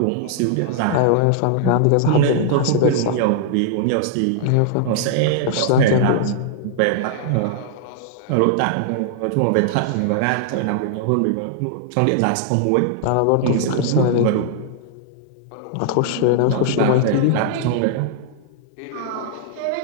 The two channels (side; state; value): both; different; correlation -0.01